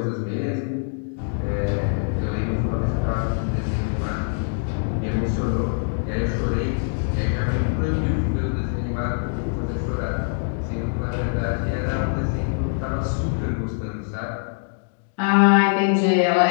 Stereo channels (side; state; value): right; silent; digital silence